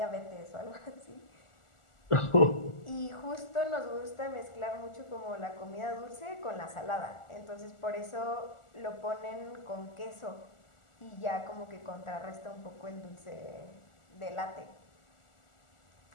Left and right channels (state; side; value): late; right; 1.4 ms